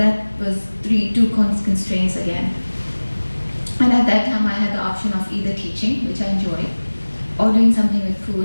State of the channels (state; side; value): inverted; both; correlation -1.00